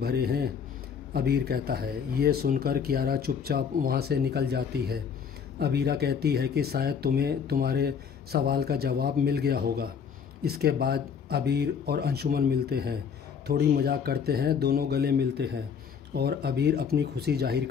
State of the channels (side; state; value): right; quieter; 6.9 dB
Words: हैं? अबीर कहता है। ये सुनकर कियारा चुपचाप वहाँ से निकल जाती है। अबीरा कहती है कि शायद तुम्हें तुम्हारे सवाल का जवाब मिल गया होगा। इसके बाद अबीर और अंशुमन मिलते हैं, थोड़ी मजाक करते हैं, दोनों गले मिलते हैं और अबीर अपनी खुशी जाहिर